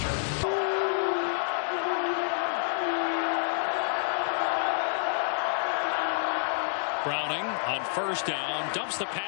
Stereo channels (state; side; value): silent; right; digital silence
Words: Browning on first down, dumps the